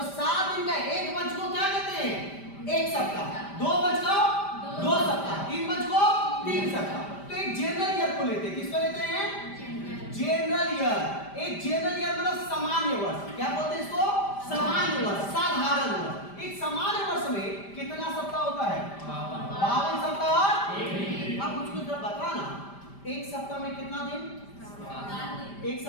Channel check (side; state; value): right; late; 5.0 ms